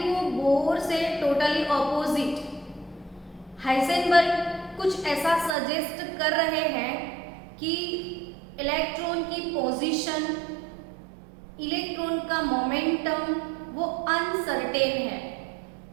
वो बोर से टोटली ऑपोजिट। हाइजेनबर्ग कुछ ऐसा सजेस्ट कर रहे हैं कि इलेक्ट्रॉन की पोजीशन, इलेक्ट्रॉन का मोमेंटम वो अनसर्टेन है।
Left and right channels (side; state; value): left; drops out; at 5.6 s